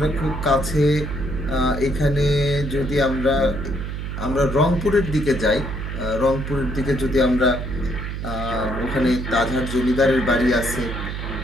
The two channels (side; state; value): right; noise; hum, 5 dB below the sound